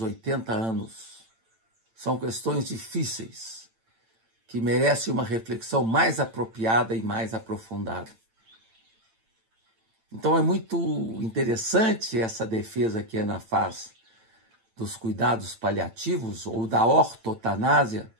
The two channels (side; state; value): left; late; 8.9 ms